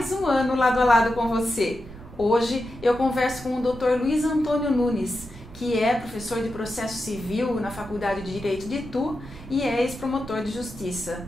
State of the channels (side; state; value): right; noise; rumble, 17 dB below the sound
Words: um ano lado a lado com você. Hoje eu converso com o Dr. Luiz Antônio Nunes, que é professor de processo civil na Faculdade de Direito de Itu e é ex-promotor de justiça.